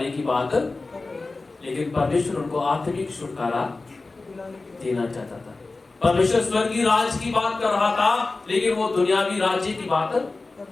की बात, लेकिन परमेश्वर उनको आत्मिक छुटकारा देना चाहता था। परमेश्वर स्वर्गीय राज की बात कर रहा था, लेकिन वो दुनियावी राज्य की बात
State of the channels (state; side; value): quieter; right; 3.5 dB